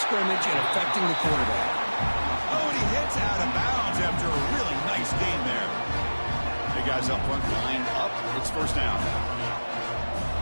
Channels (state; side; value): inverted; both; correlation -1.00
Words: and affecting the quarterback. Oh, and he hits out of bounds after a really nice gain there. Big guys up front lined up. It's first down.